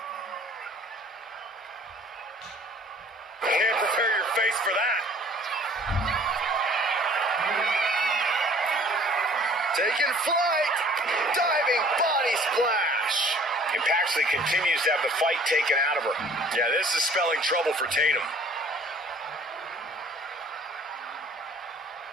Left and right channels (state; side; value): normal; both; correlation 0.53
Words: Can't prepare your face for that. Taking flight. Diving body splash. And Paxley continues to have the fight taken out of her. Yeah, this is spelling trouble for Tatum.